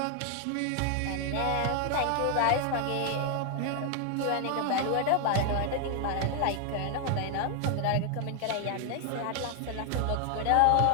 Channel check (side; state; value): both; different; correlation 0.00